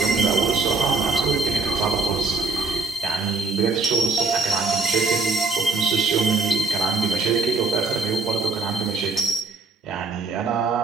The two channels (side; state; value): left; quieter; 3.8 dB